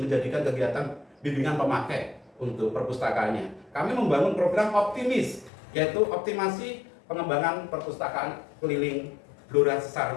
menjadikan kegiatan bimbingan pemakai untuk perpustakaannya. Kami membangun program optimis, yaitu optimasi pengembangan perpustakaan keliling Blora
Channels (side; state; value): right; drops out; at 5.5 s